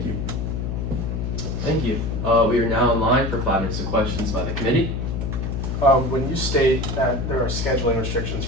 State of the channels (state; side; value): noise; left; hum, 2 dB below the sound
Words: you. Thank you. We are now in line for 5 minutes of questions by the committee. When you state that there are scheduling restrictions